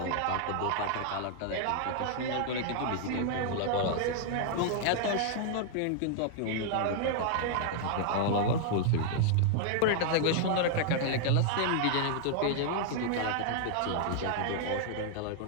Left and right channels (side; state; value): both; different; correlation -0.01